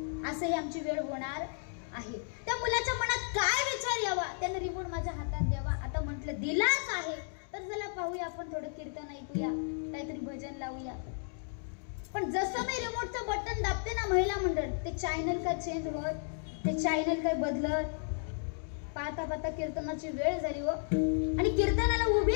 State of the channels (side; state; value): right; silent; digital silence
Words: असं ही आमची वेळ होणार. आहे. त्या मुलाच्या मनात काय विचार यावा, त्याने रिमोट माझ्या हातात द्यावा. आता म्हटलं दिलाच आहे तर चला पाहूया, आपण थोडं कीर्तन ऐकूया, काहीतरी भजन लावूया. पण जसं मी रिमोटचं बटन दाबते ना महिला मंडळ, ते चॅनल काय चेंज होत, ते चॅनल काय बदलत. पाहता पाहता कीर्तनाची वेळ झाली हो, आणि कीर्तनाला उभी